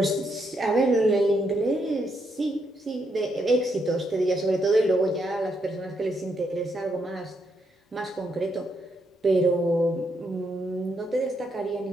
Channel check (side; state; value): both; normal; correlation 0.78